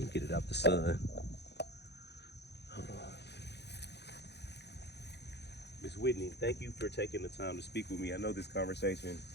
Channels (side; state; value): right; late; 0.49 ms